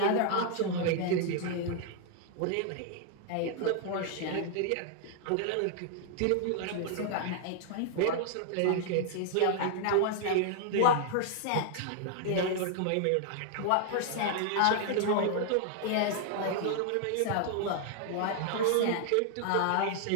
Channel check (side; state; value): both; different; correlation 0.00